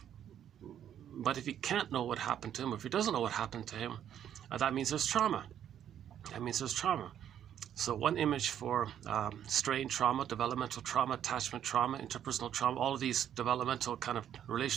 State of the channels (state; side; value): quieter; left; 10.0 dB